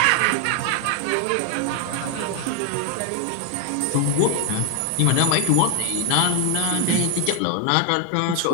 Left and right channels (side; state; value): both; different; correlation 0.00